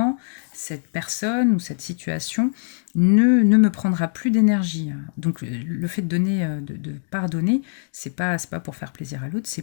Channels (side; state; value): right; silent; digital silence